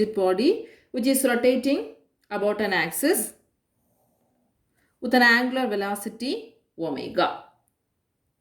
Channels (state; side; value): identical; both; correlation 1.00